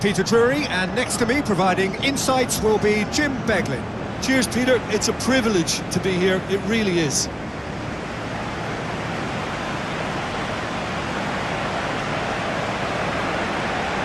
Drury, and next to me providing insights will be Jim Beglin. Cheers, Peter. It's a privilege to be here. It really is.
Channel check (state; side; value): identical; both; correlation 1.00